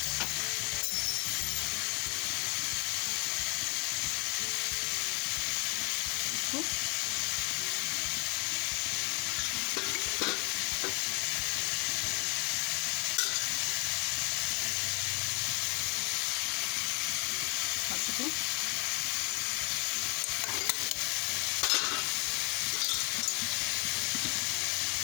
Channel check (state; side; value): quieter; right; 31.9 dB